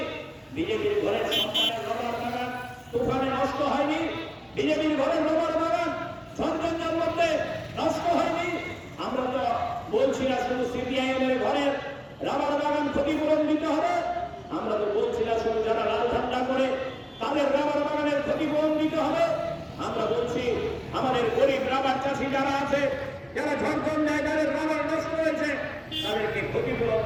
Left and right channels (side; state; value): both; identical; correlation 1.00